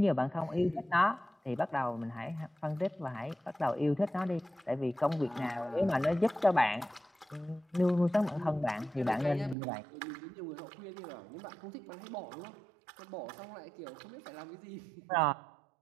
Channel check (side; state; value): left; drops out; at 9.6 s